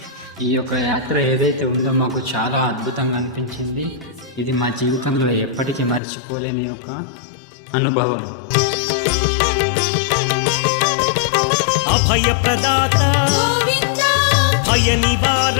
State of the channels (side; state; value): right; drops out; at 6.0 s